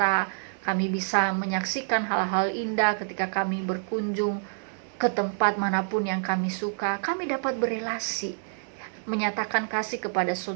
kami bisa menyaksikan hal-hal indah ketika kami berkunjung ke tempat manapun yang kami suka, kami dapat berelasi, menyatakan kasih kepada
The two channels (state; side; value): silent; left; digital silence